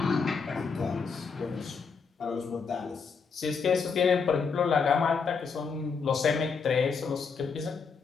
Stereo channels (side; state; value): right; quieter; 5.4 dB